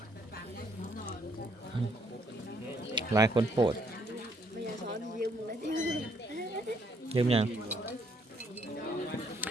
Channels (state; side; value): normal; both; correlation 0.69